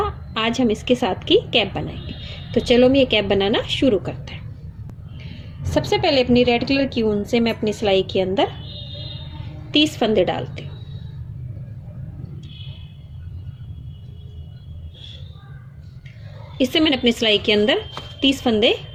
आज हम इसके साथ की कैप बनाएंगे। तो चलो हम ये कैप बनाना शुरू करते हैं। सबसे पहले अपनी रेड कलर की ऊन से मैं अपनी सिलाई के अंदर 30 फंदे डालती हूँ। इससे मैंने अपनी सिलाई के अंदर 30 फंदे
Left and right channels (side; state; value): both; identical; correlation 1.00